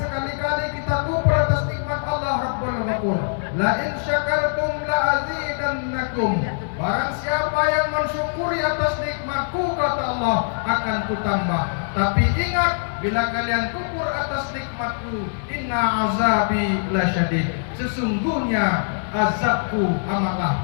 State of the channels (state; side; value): silent; right; digital silence